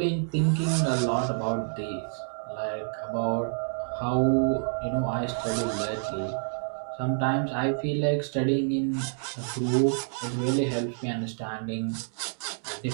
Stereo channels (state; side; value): silent; left; digital silence